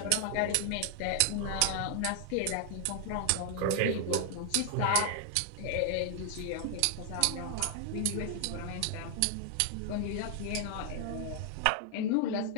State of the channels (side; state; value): both; different; correlation 0.00